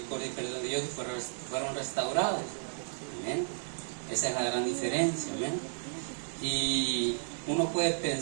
y perdón de Dios y fueron restaurados. ¿Amén? Esa es la gran diferencia. ¿Amén? Y uno puede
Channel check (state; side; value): silent; left; digital silence